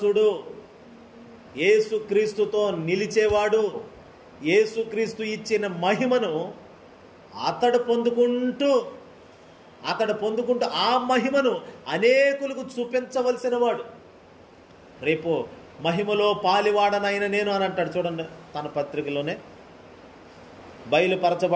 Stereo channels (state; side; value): identical; both; correlation 1.00